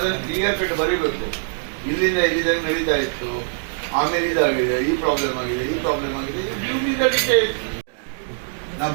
ಕ್ಲಿಯರ್ ಕಟ್ ಬರೀಬೇಕು. ಇಲ್ಲಿಂದ ಇಲ್ಲಿದಂಗೆ ನಡೀತಾ ಇತ್ತು, ಆಮೇಲೆ ಇದಾಗಿದೆ, ಈ ಪ್ರಾಬ್ಲಮ್ ಆಗಿದೆ, ಈ ಪ್ರಾಬ್ಲಮ್ ಆಗಿದೆ, ನೀವು ಮೀದಡಿಕೆ ನಾವು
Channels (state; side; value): silent; left; digital silence